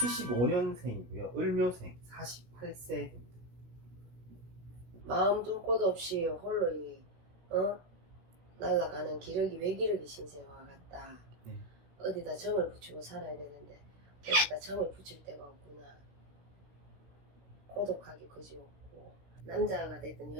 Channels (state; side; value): late; left; 16 ms